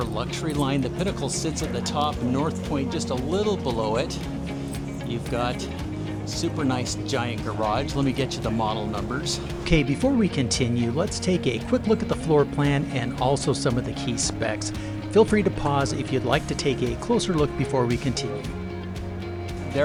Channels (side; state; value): both; identical; correlation 1.00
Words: luxury line. The Pinnacle sits at the top, North Point just a little below it. You've got super nice giant garage. Let me get you the model numbers. Okay, before we continue, let's take a quick look at the floor plan and also some of the key specs. Feel free to pause if you'd like to take a closer look before we continue.